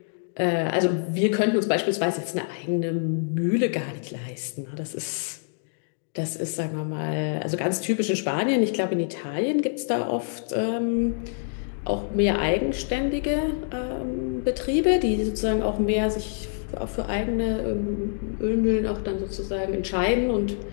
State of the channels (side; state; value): right; silent; digital silence